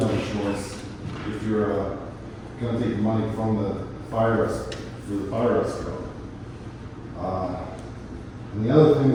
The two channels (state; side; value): identical; both; correlation 1.00